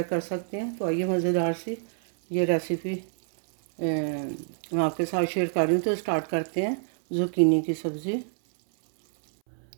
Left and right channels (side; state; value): left; silent; 60 dB below the other